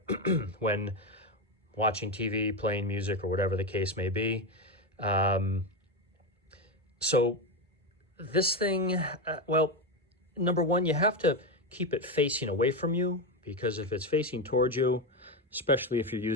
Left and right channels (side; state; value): both; normal; correlation 0.12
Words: when watching TV, playing music, or whatever the case may be. So this thing, well, number one, you have to keep it facing away from you, because if it's facing towards you, especially if you're